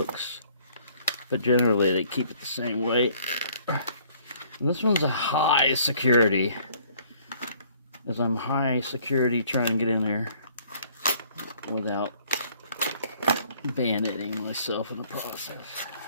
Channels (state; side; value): inverted; both; correlation -0.59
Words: But generally, they keep it the same way. And this one's a high security, as I'm high security trying to get in there without bayoneting myself in the process.